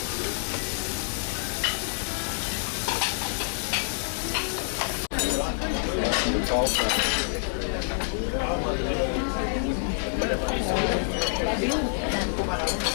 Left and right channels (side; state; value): right; silent; 60 dB below the other